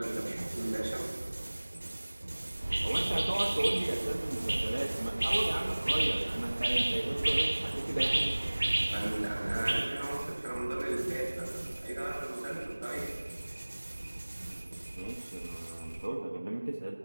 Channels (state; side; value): inverted; both; correlation -1.00